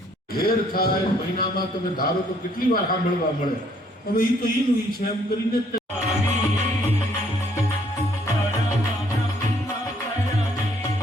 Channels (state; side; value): normal; both; correlation 0.64